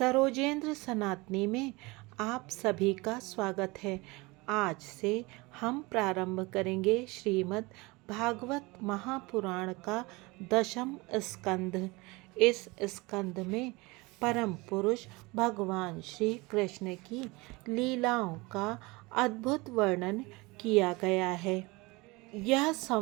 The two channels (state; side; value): quieter; left; 24.1 dB